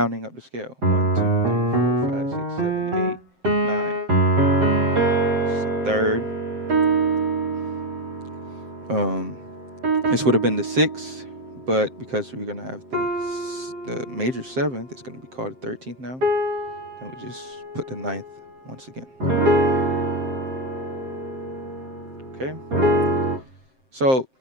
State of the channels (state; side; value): late; left; 7.6 ms